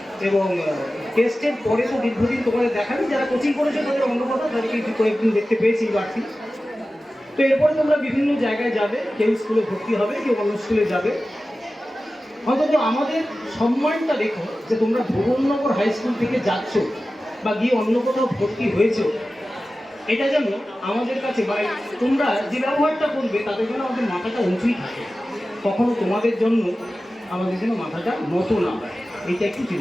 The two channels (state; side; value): normal; both; correlation 0.95